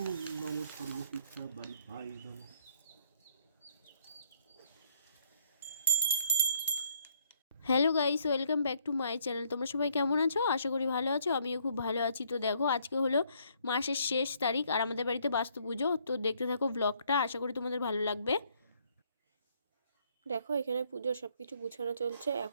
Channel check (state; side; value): inverted; both; correlation -0.67